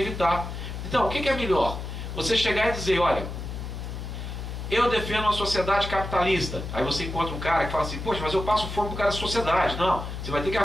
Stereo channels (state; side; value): noise; left; hum, 7 dB below the sound